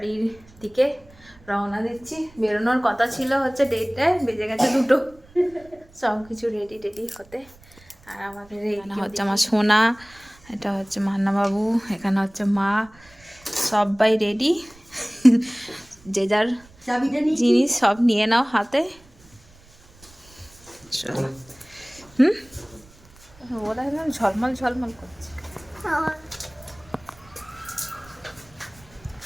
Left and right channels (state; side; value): noise; right; rumble, 26 dB below the sound